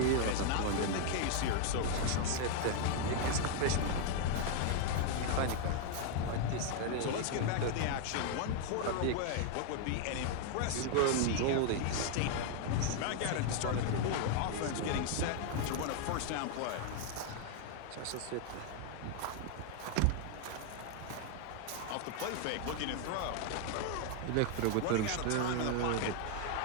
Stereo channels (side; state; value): both; different; correlation 0.00